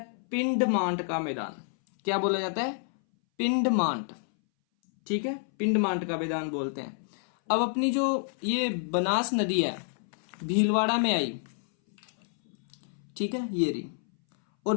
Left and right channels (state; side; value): silent; right; 59 dB below the other